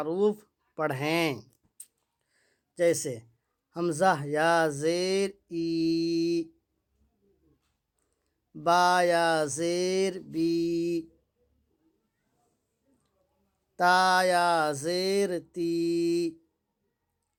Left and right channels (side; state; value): both; identical; correlation 1.00